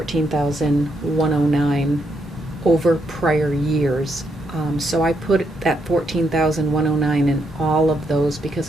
over prior years. So I put that 14,109 in all of those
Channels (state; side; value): normal; both; correlation 0.78